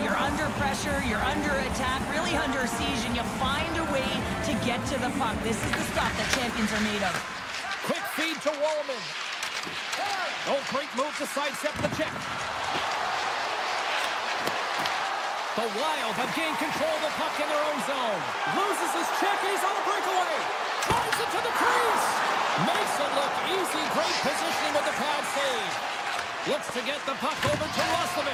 You're under pressure, you're under attack, really under siege, and you find a way to get to the puck. This is the stuff that champions are made of. Quick feed to Wallman. Oh, great move to sidestep the check. The Wild have gained control of the puck in their own zone. Loses his check, and he's on the breakaway. Drives it to the crease. Makes it look easy. Great positioning with the pad save. Looks to get the puck over to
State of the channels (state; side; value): identical; both; correlation 1.00